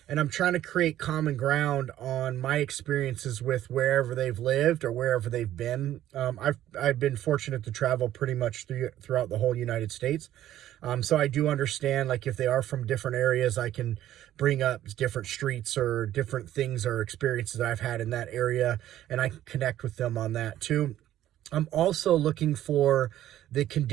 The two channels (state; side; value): quieter; left; 12.7 dB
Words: And I'm trying to create common ground on my experiences with wherever they've lived or wherever they've been. I've been fortunate to travel pretty much throughout the whole United States. So I do understand, like, if they are from different areas, I can bring up different streets or different things or experiences that I've had in that area, and I can connect with them on that too. I'm also looking for the